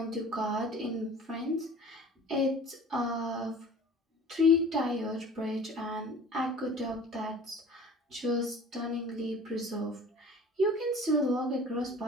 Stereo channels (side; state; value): both; normal; correlation 0.44